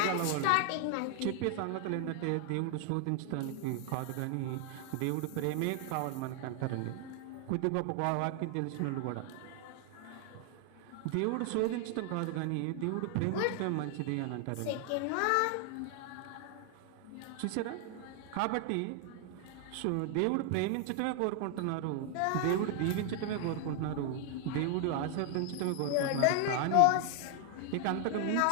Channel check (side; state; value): both; different; correlation 0.00